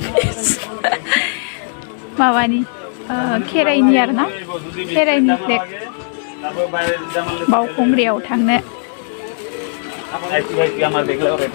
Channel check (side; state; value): right; silent; digital silence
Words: माबानि खेराइनि आरोना खेराइनि फ्लेग बावखुंग्रियाव थांनो